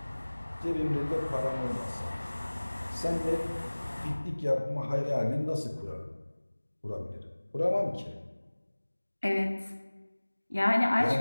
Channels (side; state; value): both; inverted; correlation -1.00